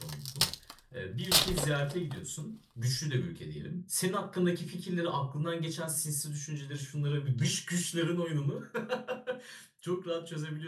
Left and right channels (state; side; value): identical; both; correlation 1.00